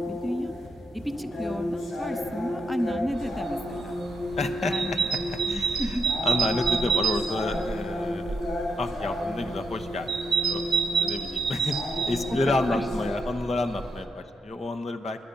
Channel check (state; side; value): normal; both; correlation 0.81